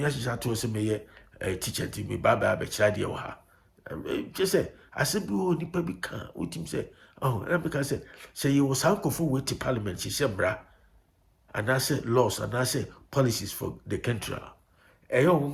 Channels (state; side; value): identical; both; correlation 1.00